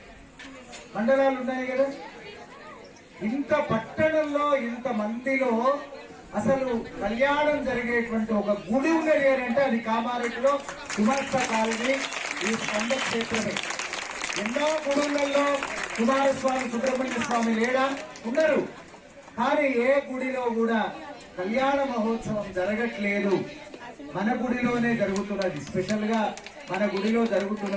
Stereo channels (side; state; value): both; identical; correlation 1.00